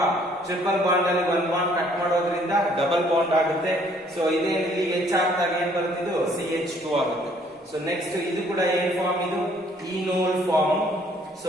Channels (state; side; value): normal; both; correlation 0.62